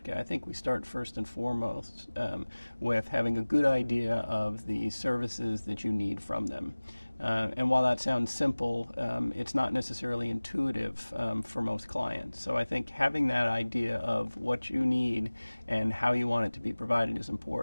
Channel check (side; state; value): both; inverted; correlation -1.00